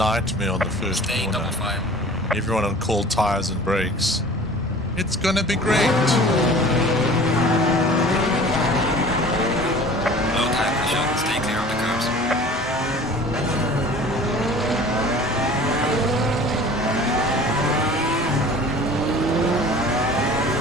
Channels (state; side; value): normal; both; correlation 0.44